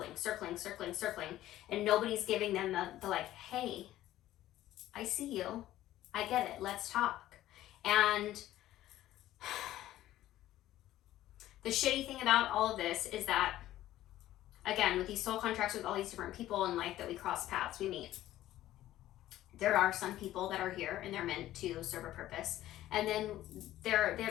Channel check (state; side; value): quieter; right; 14.2 dB